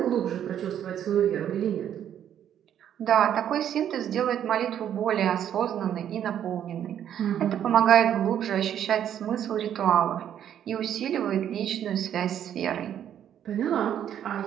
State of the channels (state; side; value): quieter; left; 9.9 dB